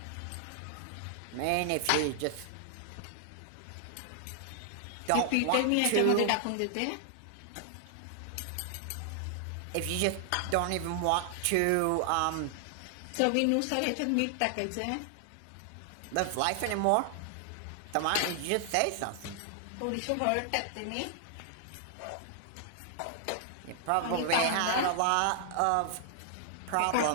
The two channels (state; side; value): different; both; correlation 0.00